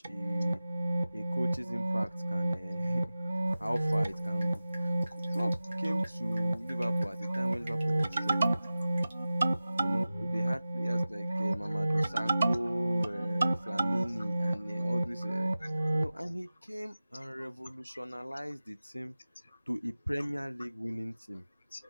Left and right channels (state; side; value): inverted; both; correlation -0.96